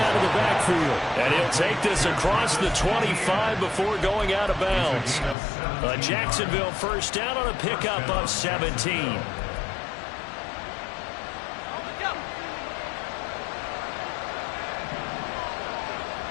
of the backfield. And he'll take this across the 25 before going out of bounds. A Jacksonville first down on a pickup of 17. Here we go.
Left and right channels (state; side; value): drops out; right; at 5.4 s